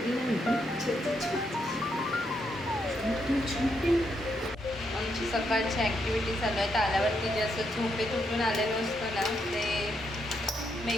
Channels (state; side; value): normal; both; correlation 0.79